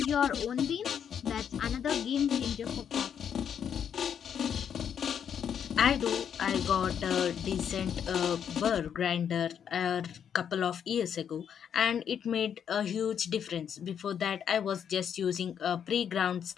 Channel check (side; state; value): right; quieter; 8.2 dB